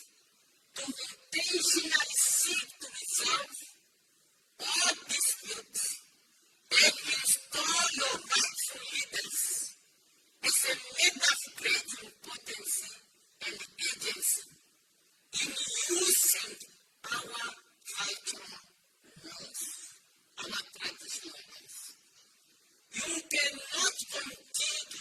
to intentionally seek to resolve all disputes and install your rightful leaders as a matter of great importance and agency in using our cultural laws, our traditional laws. You cannot continue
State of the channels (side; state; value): both; identical; correlation 1.00